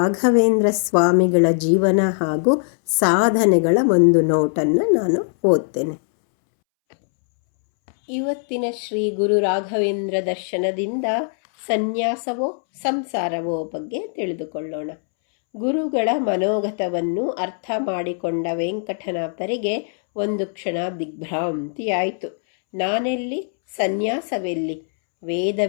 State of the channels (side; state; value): right; silent; 65 dB below the other